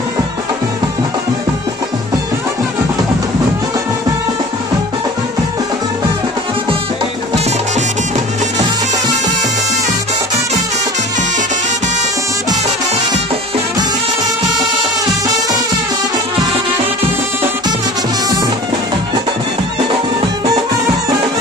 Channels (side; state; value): both; normal; correlation 0.42